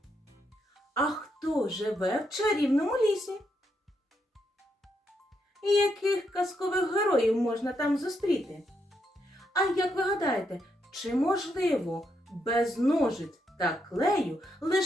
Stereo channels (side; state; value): both; normal; correlation 0.79